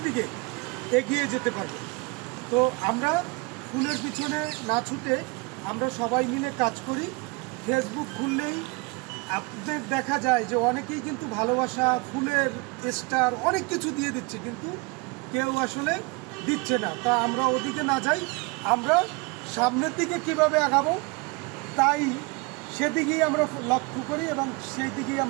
দিকে এগিয়ে যেতে পারবো। তো আমরা ফুলের পিছনে না ছুটে আমরা সবাই মিলে কাজ করি। ফেসবুক খুললেই আপনাদের দেখা যায় যে অনেকেই কিন্তু ভালোবাসা, ফুলের স্টার অনেক কিছু দিয়ে দিচ্ছে, কিন্তু কেউ আসলে দিচ্ছে না। তা আমরা ওদিকে না যাই, আমরা সামনের দিকে কিভাবে আগাবো তাই সেদিকেই আমরা লক্ষ্য করি এবং সেই দিকেই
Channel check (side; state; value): left; quieter; 27.2 dB